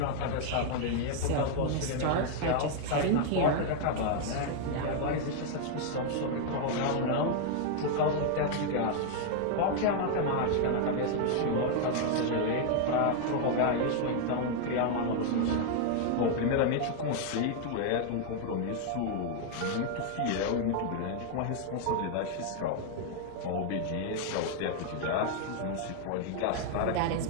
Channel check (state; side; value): different; both; correlation 0.00